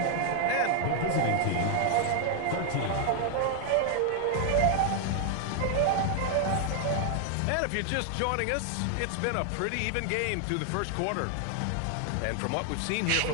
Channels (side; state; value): both; different; correlation 0.00